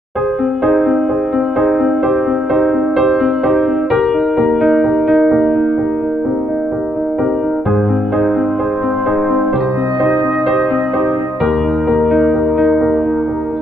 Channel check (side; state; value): both; normal; correlation 0.78